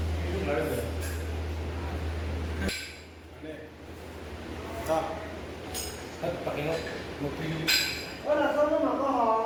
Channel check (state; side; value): identical; both; correlation 1.00